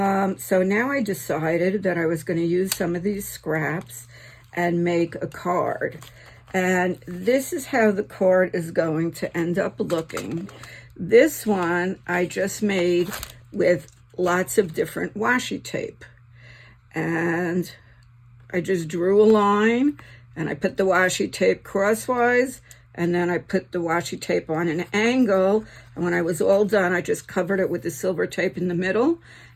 So now I decided that I was going to use some of these scraps and make a card. And this is how the card is going to end up looking. This one I just made with lots of different washi tape. And I just drew a line and I put the washi tape crosswise, and then I put the washi tape on an angle. And when I was all done, I just covered it with the silver tape in the middle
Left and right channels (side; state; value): both; identical; correlation 1.00